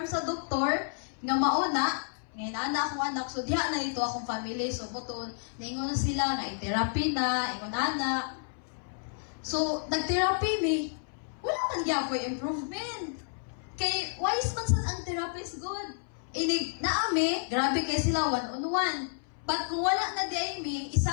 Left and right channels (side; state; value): right; silent; 57 dB below the other